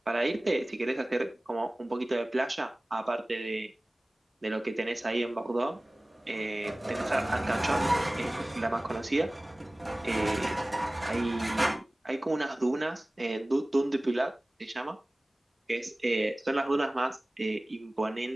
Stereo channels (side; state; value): both; normal; correlation 0.98